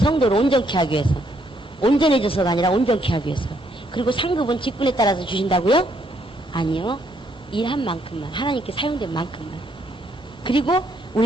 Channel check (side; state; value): both; normal; correlation 0.72